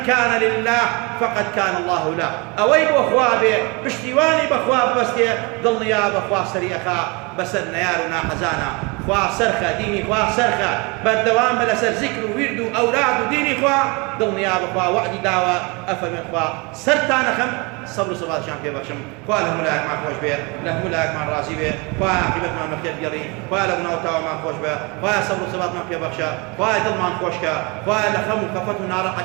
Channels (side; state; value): left; quieter; 28.6 dB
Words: كان لله فقد كان الله له أوي بأخوابي بشتيواني بأخواب بستي ضل يا بأخواب سريخا بسر نيارنا حزانا خوا سرخة ديني خوا سرخة بردوام بلا سر ذكر ويردو أولاد ديني خوا ضل يا بأخوا وعدي داوة أفهم خوا سرتانا خم صبر صبات شام في بخشم خوا لهم لاك مع خوش بيه لهم لاك مع الرازي بيه خوا عقبت مع مخير جري خوا لهم نوتاو مع خوش بيه خوا صبر صبات مع في بخشا خوا دل مع خوشكا خوا لخم وكفت